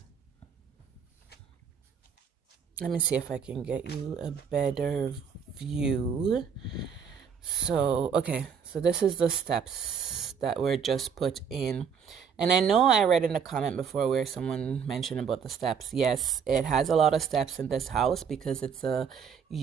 Let me see if I can get you a better view. So, okay. So this is the steps that were just put in. And I know I read in a comment before where someone mentioned about the steps. Yes, it has a lot of steps in this house because it's a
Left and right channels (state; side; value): quieter; left; 6.8 dB